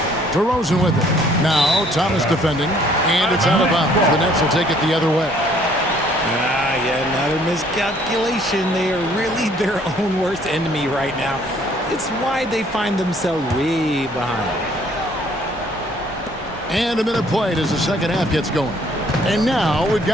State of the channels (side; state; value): both; normal; correlation 0.61